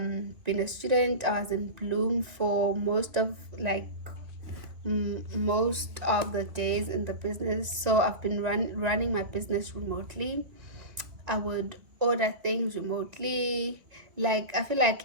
being a student, I was in Bloom for most of most of the days in the business. So I've been running my business remotely. I would order things remotely. Like, I feel like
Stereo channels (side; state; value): left; late; 2.2 ms